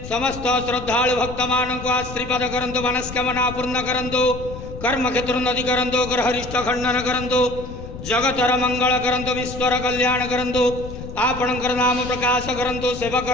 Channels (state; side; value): noise; left; rumble, 11 dB below the sound